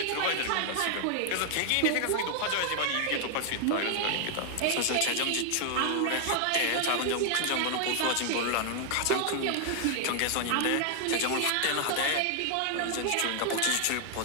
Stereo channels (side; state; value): both; different; correlation 0.00